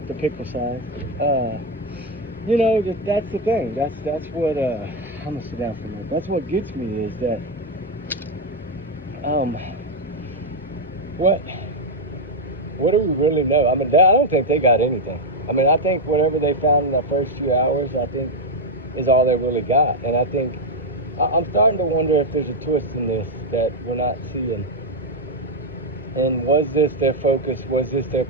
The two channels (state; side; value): normal; both; correlation 0.03